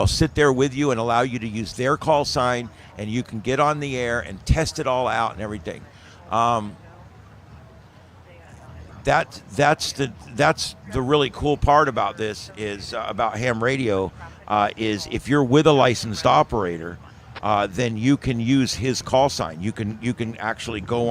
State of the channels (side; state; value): both; identical; correlation 1.00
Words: sit there with you and allow you to use their call sign, and you can get on the air and test it all out and everything. That's the really cool part about this is about ham radio is if you're with a licensed operator, then you can use his call sign. You can actually go